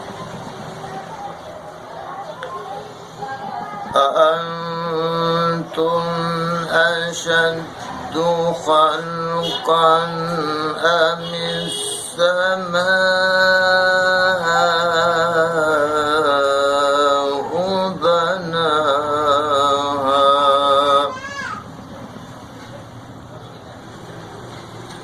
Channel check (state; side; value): identical; both; correlation 1.00